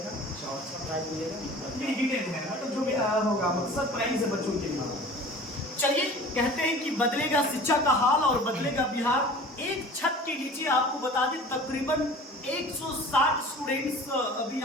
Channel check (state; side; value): normal; both; correlation 0.42